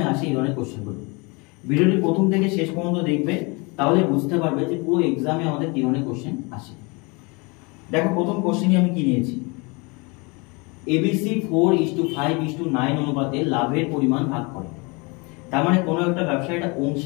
আসে এই ধরনের কোশ্চেনগুলো। ভিডিওটি প্রথম থেকে শেষ পর্যন্ত দেখবে, তাহলে বুঝতে পারবে যে পুরো এক্সামে আমাদের কি ধরনের কোশ্চেন আসে। দেখো প্রথম কোশ্চেনই আমি কি নিয়েছি, এবিসি 4:5:9 অনুপাতে লাভের পরিমাণ ভাগ করে। তার মানে কোনো একটা ব্যবসা, এটা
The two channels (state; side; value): quieter; right; 28.7 dB